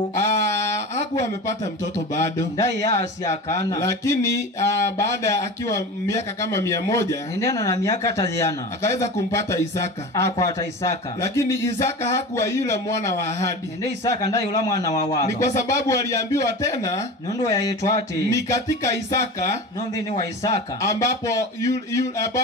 hakuwa amepata mtoto bado. Lakini baada akiwa miaka kama 100 akaweza kumpata Isaka. Lakini Isaka hakuwa yule mwana wa ahadi. wawa. Ni kwa sababu waliambiwa tena nundu yaitwa ati ni katika Isaka nondi ni wa Isaka ambapo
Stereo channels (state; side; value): normal; both; correlation 0.31